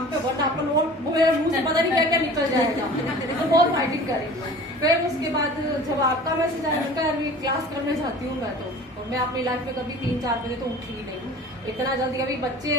पे, वरना अपन वो मेरे मुंह से पता नहीं क्या क्या निकल जाएगा। तो बहुत फाइटिंग करेंगे। फिर उसके बाद जब आपका मैसेज आया, उनका यार मैं क्लास करने जाती हूँ मैं तो, और मैं अपनी लाइफ में कभी 3-4 बजे तो उठी ही नहीं। इतना जल्दी, अभी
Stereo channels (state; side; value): normal; both; correlation 0.42